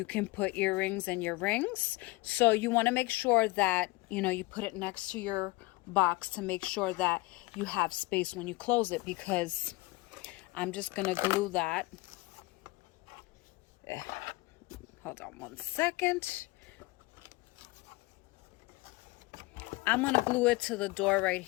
can put earrings and your rings. So you want to make sure that, you put it next to your box to make sure that you have space when you close it, because I'm just going to glue that. Hold on one second. I'm going to glue it to the door right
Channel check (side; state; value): right; quieter; 22.2 dB